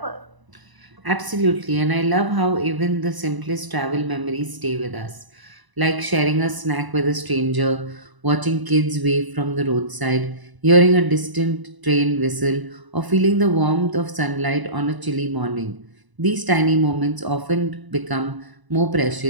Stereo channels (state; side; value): late; left; 1.0 ms